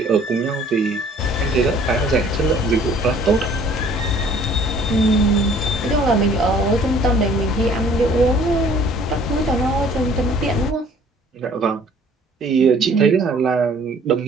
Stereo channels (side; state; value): both; normal; correlation 0.55